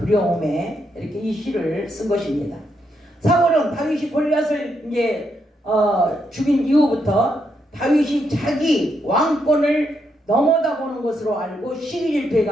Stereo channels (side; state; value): both; normal; correlation 0.79